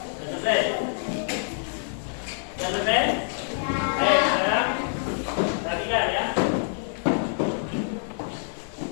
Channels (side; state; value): right; silent; digital silence